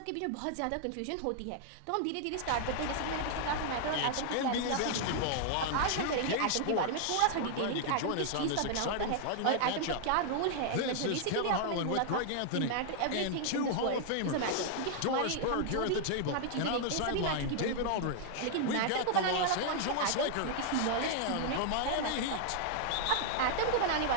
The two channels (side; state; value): both; different; correlation 0.00